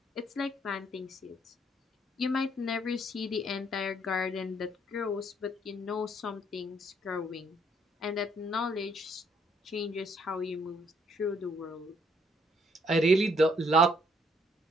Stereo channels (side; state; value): both; normal; correlation 0.67